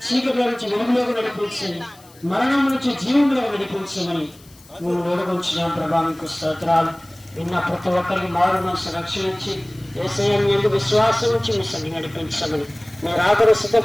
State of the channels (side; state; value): left; noise; hiss, 26 dB below the sound